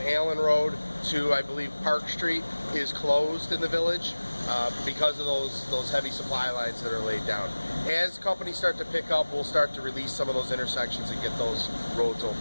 Allen Road to, I believe, Park Street is closed in the village because of those heavy supply lines that are laid down. As companies start to pick up, we'll start to release some of those intersections and get those roads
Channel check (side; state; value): both; inverted; correlation -1.00